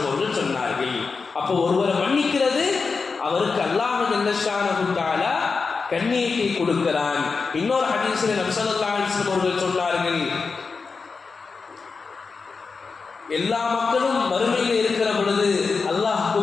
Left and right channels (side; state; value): right; quieter; 4.7 dB